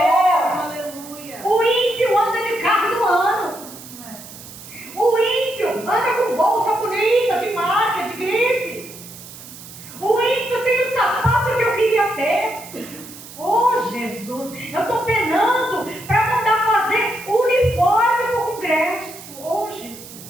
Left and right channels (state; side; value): noise; right; hiss, 16 dB below the sound